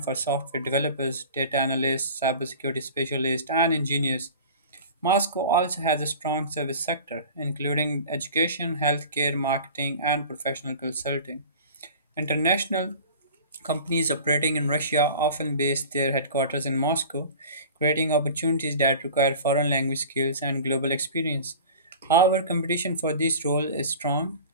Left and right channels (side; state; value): both; inverted; correlation -0.39